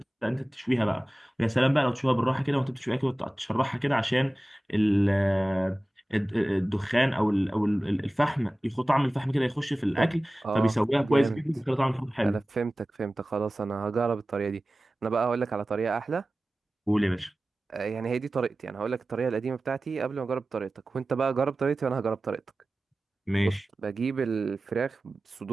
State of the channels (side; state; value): both; normal; correlation 0.97